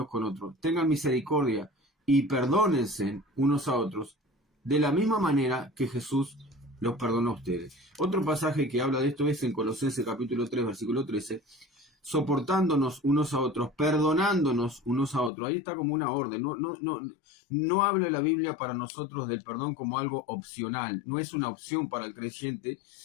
con otros, tengan misericordia y perdónense unos a otros, de la misma manera que Jesús los perdonó a ustedes. Otro pasaje que habla de esto es en Colosenses capítulo 3, versículo 13, soportándonos unos a otros, perdonándonos unos a otros. Ahí está como una orden. No habla la Biblia para nosotros del perdón como algo opcional. No es una opción para el creyente,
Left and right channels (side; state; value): right; drops out; at 15.3 s